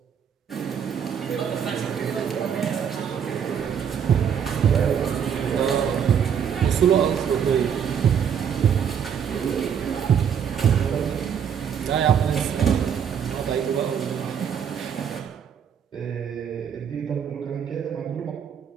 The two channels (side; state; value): left; quieter; 7.9 dB